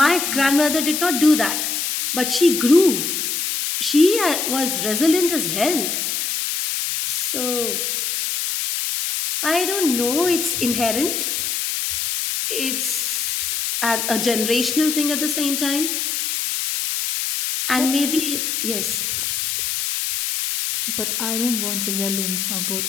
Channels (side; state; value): left; noise; hiss, 1 dB below the sound